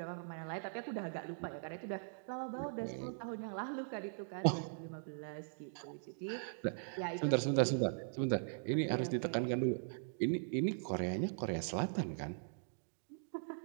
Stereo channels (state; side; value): silent; left; digital silence